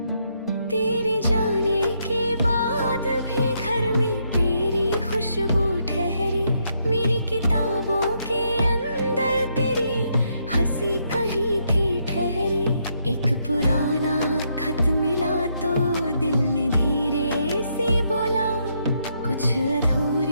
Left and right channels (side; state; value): both; inverted; correlation -0.76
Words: तेरे जाने के बाद भी घर में तेरी खुशबू ठहरी, मेरी किताबों के अंदर तेरी हंसी कहीं थी ठहरी। एक पुराना खत मिला तो दिल ने धीरे से बोला, कुछ